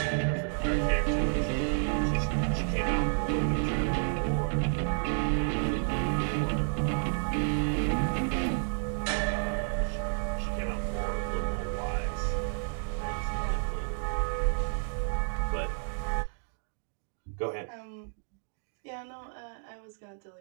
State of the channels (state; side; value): silent; left; 57 dB below the other